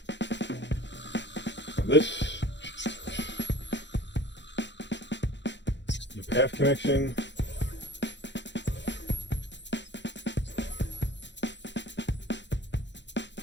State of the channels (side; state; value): right; late; 0.52 ms